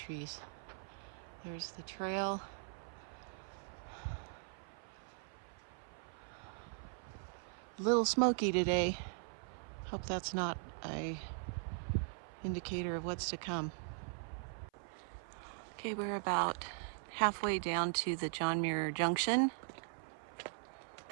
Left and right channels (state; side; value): silent; left; 51 dB below the other